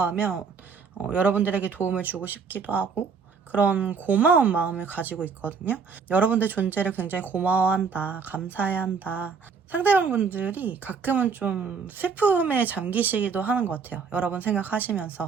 하면 여러분들에게 도움을 주고 싶기도 하고 그런 고마운 마음을 가지고 있거든요. 여러분들 존재를 굉장히 고마워한다, 감사해야 한다. 상대방 분들이 가끔은 좀 슬픔에 잠기시기도 하는 것 같아요. 여러분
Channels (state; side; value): quieter; left; 5.6 dB